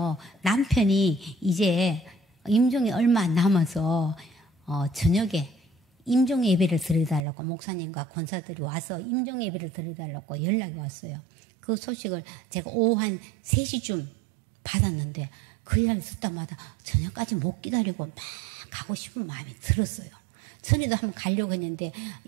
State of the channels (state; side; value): drops out; left; at 7.2 s